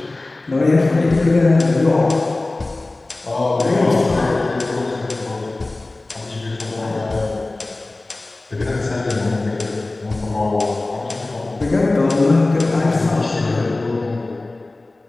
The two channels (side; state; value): right; quieter; 3.0 dB